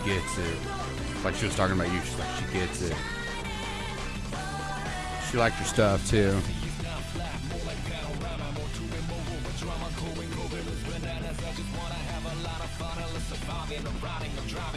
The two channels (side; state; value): both; identical; correlation 1.00